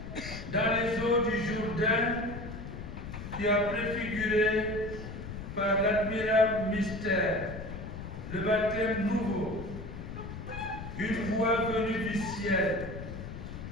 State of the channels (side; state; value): left; noise; rumble, 9 dB below the sound